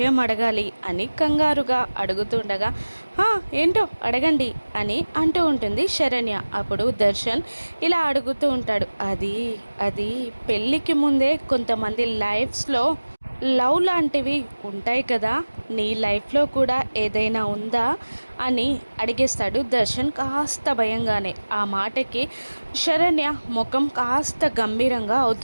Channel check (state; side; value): inverted; both; correlation -1.00